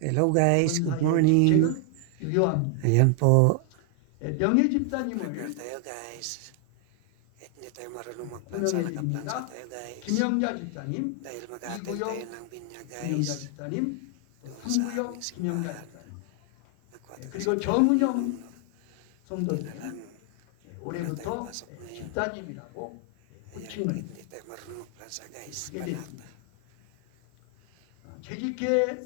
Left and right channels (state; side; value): different; both; correlation 0.00